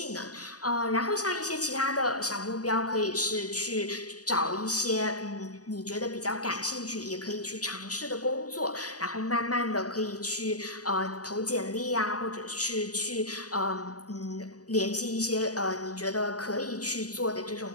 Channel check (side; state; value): right; late; 0.68 ms